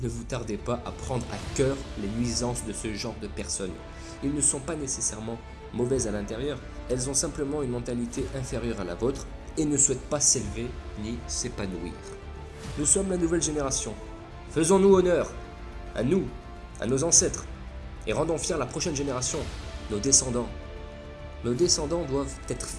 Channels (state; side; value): identical; both; correlation 1.00